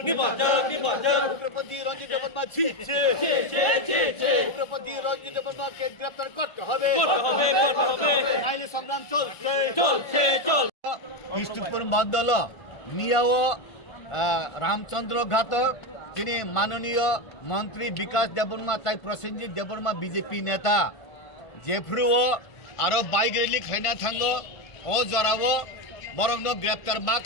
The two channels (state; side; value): late; right; 1.5 ms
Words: উগ্রপন্থী রঞ্জিত দেববর্মা ছিটছে। উগ্রপন্থী রঞ্জিত দেববর্মাকে গ্রেপ্তার করতে হবে। নাইলে সংগ্রাম চলছে। কৃষ্ণপুর মন্ডল মিয়াও রামচন্দ্র ঘাট যিনি মাননীয় মন্ত্রী বিকাশ দেববর্মা তাই প্রসেনজিৎ দেববর্মা বিজেপি নেতা जेफ्रुओ आरो बाइक रैली खाइना थांगो ओ जरावो बरंग ग्रेप्तार मा